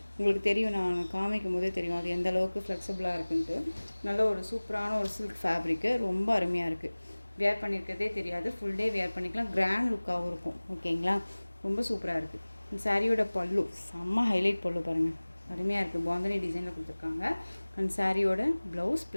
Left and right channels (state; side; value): inverted; both; correlation -1.00